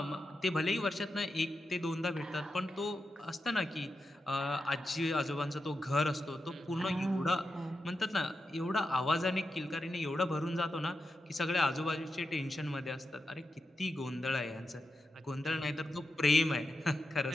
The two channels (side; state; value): both; normal; correlation 0.89